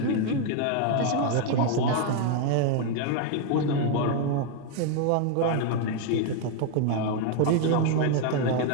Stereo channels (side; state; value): both; different; correlation 0.01